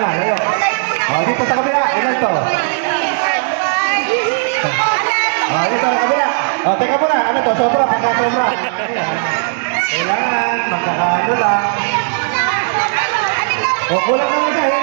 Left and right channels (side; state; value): left; silent; digital silence